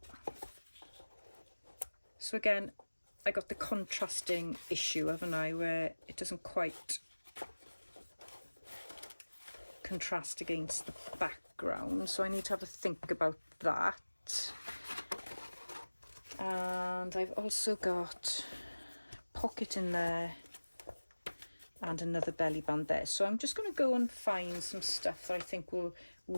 So again, I got the contrasting issue, haven't I, where it doesn't quite contrast against the background, so I need to have a think about that. And I've also got a pocket in there and another belly band there, so I'm just going to go and find some stuff that I think will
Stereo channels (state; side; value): inverted; both; correlation -1.00